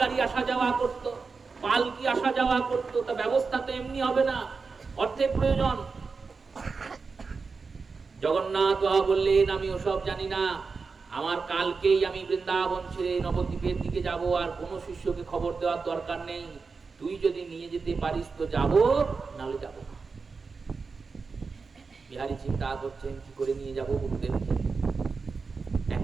আসা যাওয়া করত, পালকি আসা যাওয়া করত। তা ব্যবস্থা তো এমনি হবে না, অর্থের প্রয়োজন। জগন্নাথ বাবা বললেন আমি ওসব জানি না, আমার কালকেই আমি বৃন্দাবন ছেড়ে নবদ্বীপের দিকে যাব, আর কোন শিষ্যকে খবর দেওয়ার দরকার নেই। তুই যদি নিয়ে যেতে পারিস তো যাব, নাহলে যাব না। বিহারী চিন্তা করছেন কি করে নিয়ে যাব গুরুদেবকে।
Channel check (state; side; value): quieter; left; 4.7 dB